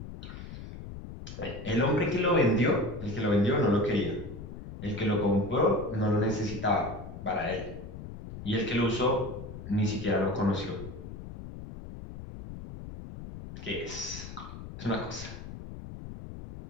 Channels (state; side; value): noise; left; rumble, 11 dB below the sound